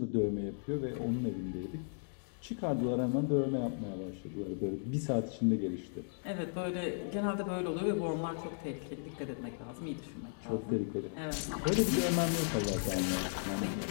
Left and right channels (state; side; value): silent; right; digital silence